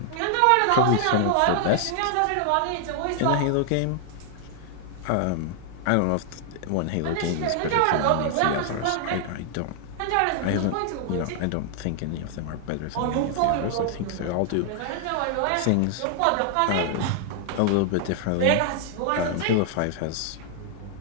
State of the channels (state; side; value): different; both; correlation 0.00